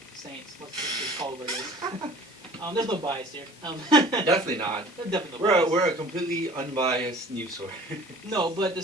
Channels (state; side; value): normal; both; correlation 0.46